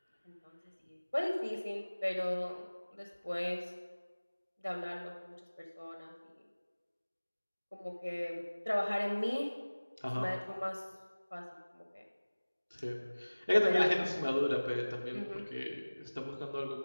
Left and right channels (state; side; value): inverted; both; correlation -1.00